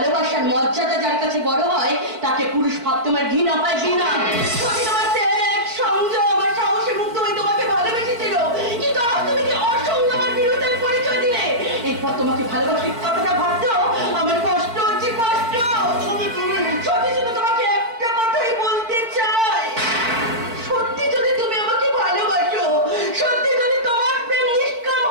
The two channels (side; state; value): left; late; 4.5 ms